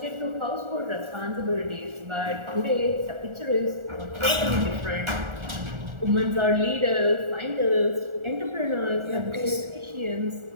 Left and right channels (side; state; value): left; late; 1.4 ms